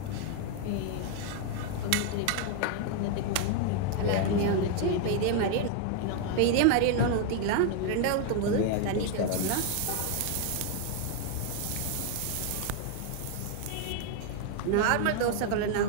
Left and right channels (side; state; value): both; different; correlation 0.00